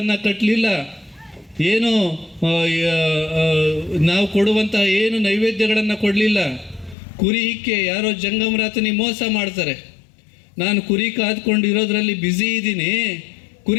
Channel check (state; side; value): drops out; right; at 7.0 s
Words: ಕಟ್ಟಲಿಲ್ಲ. ಏನು ನಾವು ಕೊಡುವಂಥ ಏನು ನೈವೇದ್ಯಗಳನ್ನು ಕೊಡಲಿಲ್ಲ. ಕುರಿ ಹಿಕ್ಕೆ ಯಾರೋ ಜಂಗಮರಾತನಿಗೆ ಮೋಸ ಮಾಡ್ತಾರೆ. ನಾನು ಕುರಿ ಕಾದ್ಕೊಂಡಿರೋದ್ರಲ್ಲಿ ಬ್ಯುಸಿ ಇದ್ದೀನಿ,